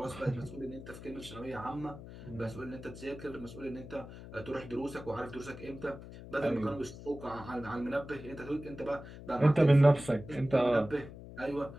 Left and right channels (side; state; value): left; noise; hum, 14 dB below the sound